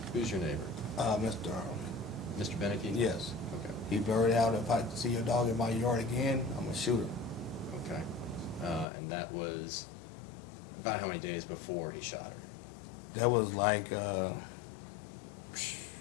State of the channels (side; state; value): right; drops out; at 8.8 s